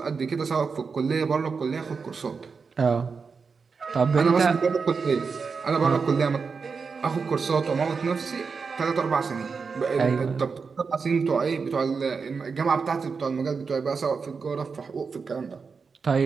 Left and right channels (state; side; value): quieter; left; 5.2 dB